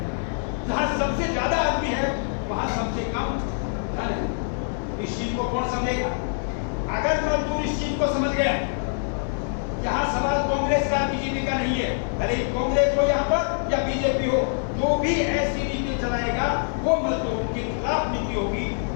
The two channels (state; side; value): silent; right; 62 dB below the other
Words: जहां सबसे ज्यादा आदमी है वहां सबसे कम धन है। इस चीज को कौन समझेगा, अगर मजदूर इस चीज को समझ गया। यहाँ सवाल कांग्रेस का बीजेपी का नहीं है, भले कांग्रेस हो यहाँ पर या बीजेपी हो, जो भी ऐसी नीति चलाएगा वो मजदूरों के खिलाफ नीति होगी,